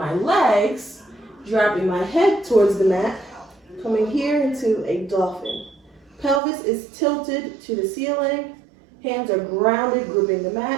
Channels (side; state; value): left; drops out; at 6.4 s